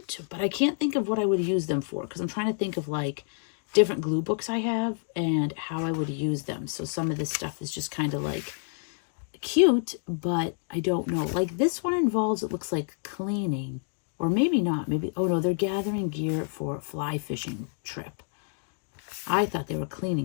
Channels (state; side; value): silent; right; 59 dB below the other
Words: but I can't think of what I would use them for because I'm trying to think of like different glue books I have and how I would use them. So some of this stuff is just kind of like cute, but I don't know. Like this one involves, it looks like cleaning, or maybe not. Maybe, oh no, they're gathering gear for a fly fishing trip. I thought they were